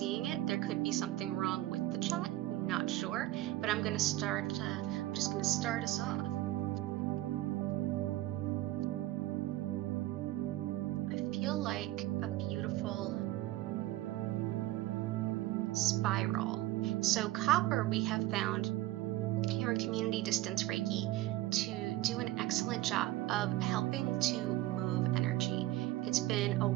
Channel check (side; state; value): left; quieter; 16.2 dB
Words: it. There could be something wrong with the chat, not sure, but I'm going to start, I'm just going to start us off. I feel like a beautiful spiral. So copper we have found here in Community Distance Reiki to do an excellent job of helping to move energy. It's been a